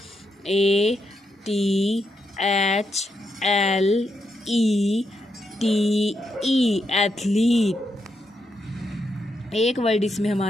ATHLETE, एथलीट। एक वर्ड इसमें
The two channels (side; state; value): both; normal; correlation 0.82